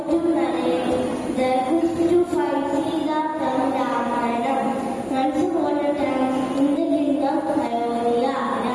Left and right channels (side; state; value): both; identical; correlation 1.00